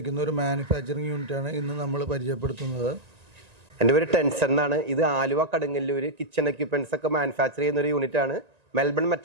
ഒരു മാനുഫാക്ചറിങ് യൂണിറ്റാണ് ഇന്ന് നമ്മൾ പരിചയപ്പെടുത്തുന്നത്. എൻ്റെ പേര് ടെൻസൺ എന്നാണ്. ഇത് ആലുവ കടുങ്ങല്ലൂർ കിച്ചൺ എക്യുപ്മെൻറ്റ്സ് ഒക്കെ മാനുഫാക്ചർ ചെയ്യുന്ന ഒരു യൂണിറ്റാണ്. മെൽബൺ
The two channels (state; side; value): late; left; 1.9 ms